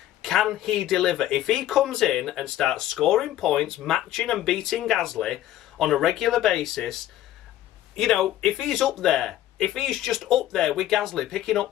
Can he deliver? If he comes in and starts scoring points, matching and beating Gasly on a regular basis, you know, if he's up there, if he's just up there with Gasly picking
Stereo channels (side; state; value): right; quieter; 13.2 dB